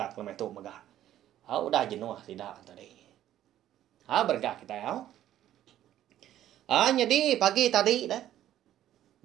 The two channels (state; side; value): quieter; left; 12.3 dB